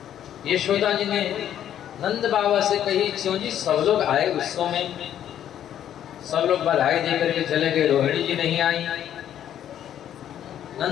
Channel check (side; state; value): right; quieter; 10.6 dB